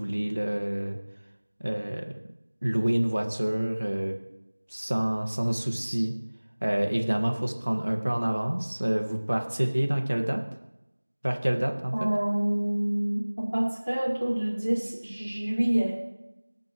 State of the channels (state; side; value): inverted; both; correlation -1.00